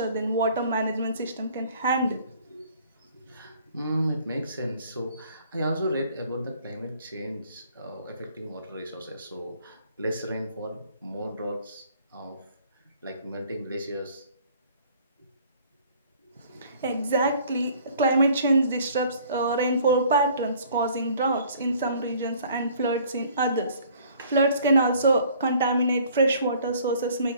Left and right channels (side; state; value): both; inverted; correlation -0.56